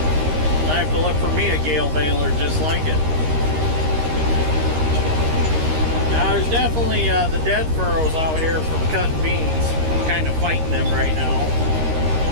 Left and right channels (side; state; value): left; late; 13 ms